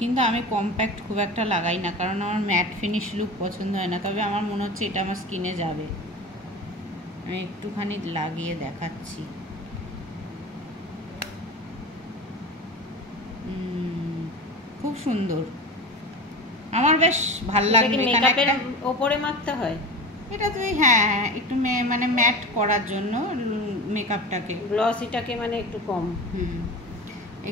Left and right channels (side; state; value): both; normal; correlation 0.31